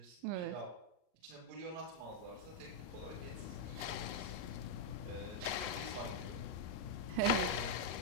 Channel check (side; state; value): left; late; 38 ms